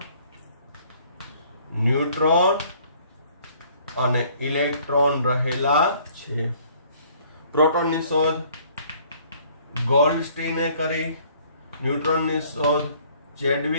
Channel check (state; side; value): inverted; both; correlation -0.59